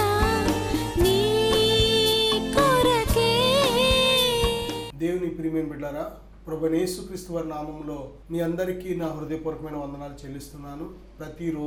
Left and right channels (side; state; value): both; identical; correlation 1.00